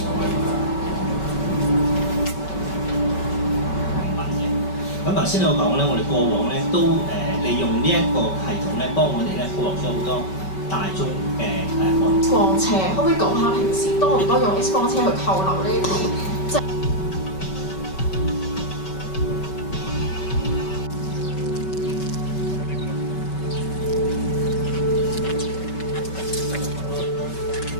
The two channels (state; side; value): late; right; 5.3 ms